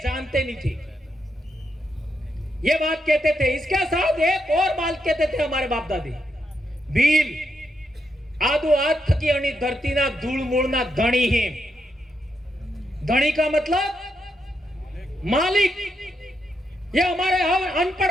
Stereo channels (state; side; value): normal; both; correlation 0.82